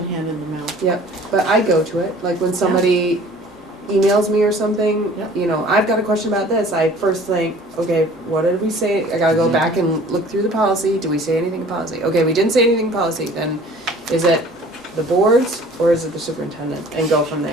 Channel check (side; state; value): both; normal; correlation 0.49